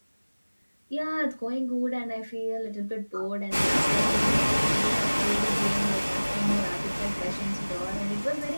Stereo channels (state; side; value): inverted; both; correlation -1.00